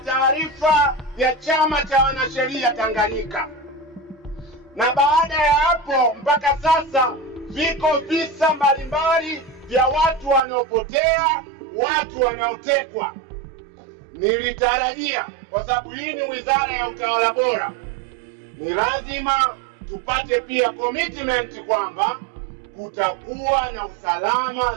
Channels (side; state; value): left; drops out; at 10.4 s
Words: ya Chama cha Wanasheria Tanganyika, na baada ya hapo mpaka sasa viko visa mbalimbali vya watu wanaopotea, watu wanaotekwa. Nilitarajia, kwa sababu hii ni wizara ya utawala bora, ni lazima tupate pia commitment kwamba kutakuwa na usalama